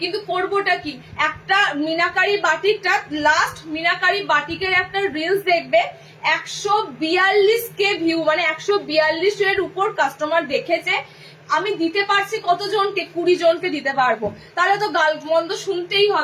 কিন্তু করবোটা কি, একটা মিনাকারি বাটিকটা, লাস্ট মিনাকারি বাটিকের একটা রিলস দেখবে 142K ভিউ, মানে 142 এর উপর কাস্টমার দেখেছে। আমি দিতে পারছি কতজনকে, 20 জনকে দিতে পারবো, তাহলে তো গাল মন্দ শুনতেই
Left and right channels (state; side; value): identical; both; correlation 1.00